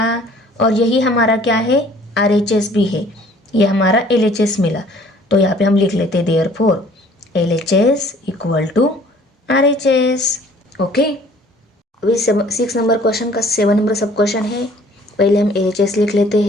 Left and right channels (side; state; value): both; normal; correlation 0.55